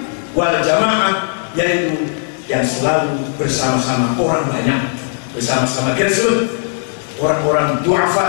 wal jamaah, yaitu yang selalu bersama-sama orang banyak, bersama-sama grassroots, orang-orang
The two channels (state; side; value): silent; right; digital silence